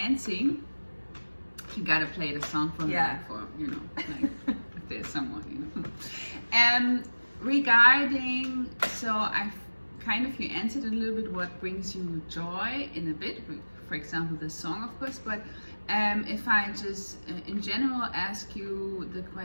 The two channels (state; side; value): inverted; both; correlation -1.00